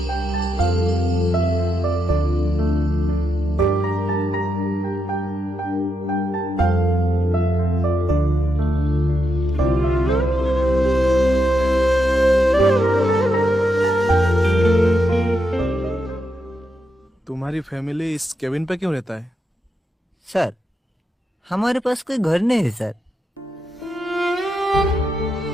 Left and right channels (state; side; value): normal; both; correlation 0.83